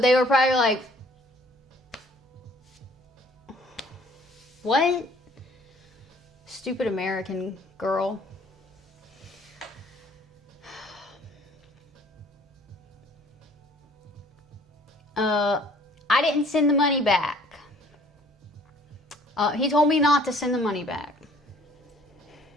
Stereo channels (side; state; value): both; normal; correlation 0.56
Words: were probably like, what? Stupid American girl. I didn't send the money back. He told me not to send the money back.